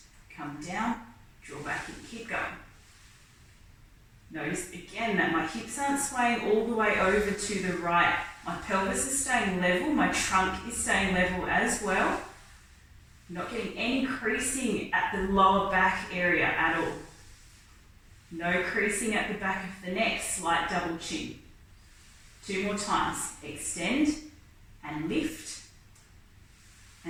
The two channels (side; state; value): both; identical; correlation 1.00